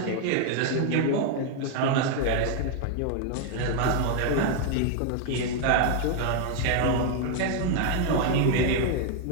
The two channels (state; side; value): different; both; correlation 0.00